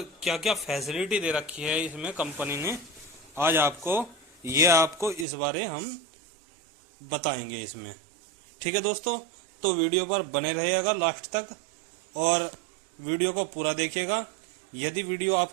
क्या क्या फैसिलिटी दे रखी है इसमें कंपनी ने। आज आपको इस बारे हम बताएंगे इसमें। ठीक है दोस्तों, तो वीडियो पर बने रहिएगा लास्ट तक और वीडियो को पूरा देखिएगा। यदि वीडियो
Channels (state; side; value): drops out; left; at 5.2 s